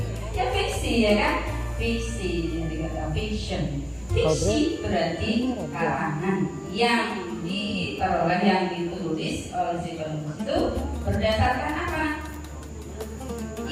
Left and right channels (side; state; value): both; identical; correlation 1.00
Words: Ya fiksi, ya kan? Fiksi, dari kata fiction. Fiksi berarti karangan yang diperoleh, yang ditulis oleh si penulis itu berdasarkan apa?